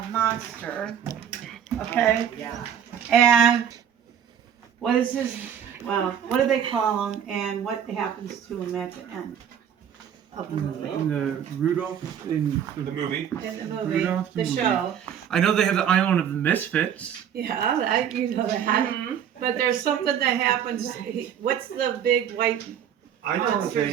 monster, okay? Yeah. And what is his, well, what do they call him, and what happens to him at the end of the movie? And the Rudolph in The movie. In the movie, Rudolph the the movie. show. I know they have the Island of the Misfits. Yeah, you know that. But there's something that happens, what's the big white I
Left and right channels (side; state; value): left; quieter; 8.9 dB